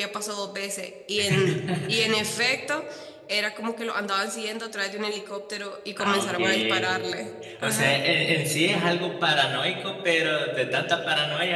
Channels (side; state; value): both; identical; correlation 1.00